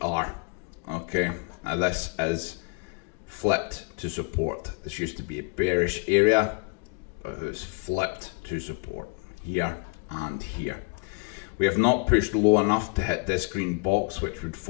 Okay, now this is flipped to support. This used to be a bearish area, but it's flipped to support here and here. We have not pushed low enough to hit this green box, which would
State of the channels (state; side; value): quieter; right; 34.3 dB